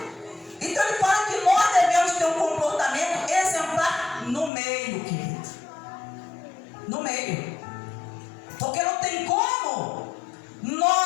Então ele fala que nós devemos ter um comportamento exemplar no meio, querido. No meio. Porque não tem como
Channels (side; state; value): right; drops out; at 4.5 s